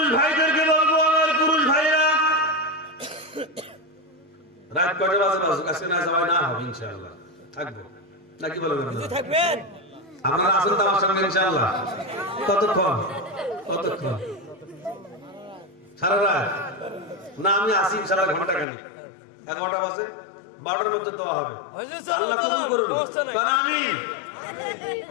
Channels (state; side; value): drops out; right; at 18.7 s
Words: ভাইদেরকে বলবো, আমার পুরুষ ভাইরা, রাত কয়টা বাজে বাজুক, আজকে না যাওয়া না হবে ইনশাআল্লাহ, থাকবো নাকি বলবেন? থাকবেন, আপনারা আছেন তো আমার সঙ্গে ইনশাআল্লাহ। কতক্ষণ? কতক্ষণ? সারা রাত না? আমি আসি ইনশাআল্লাহ ঘন্টা খানিক, 11টা বাজে, 12টার মধ্যে দেওয়া হবে। আল্লাহ কবুল করুন। আমিন।